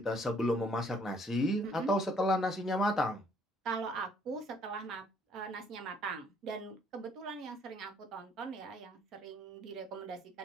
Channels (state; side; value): normal; both; correlation 0.64